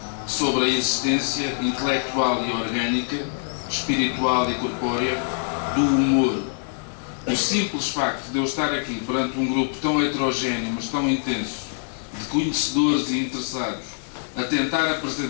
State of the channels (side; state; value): right; silent; digital silence